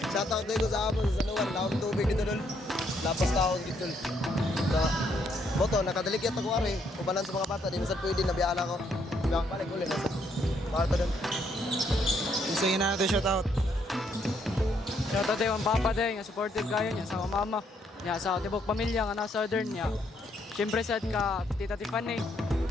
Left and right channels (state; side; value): normal; both; correlation 0.72